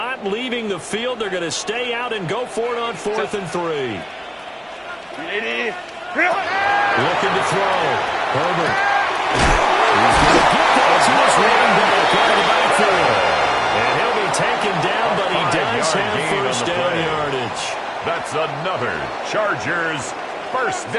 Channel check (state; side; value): identical; both; correlation 1.00